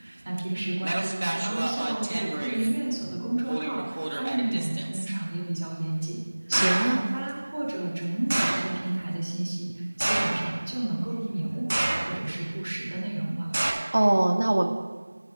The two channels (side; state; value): both; inverted; correlation -1.00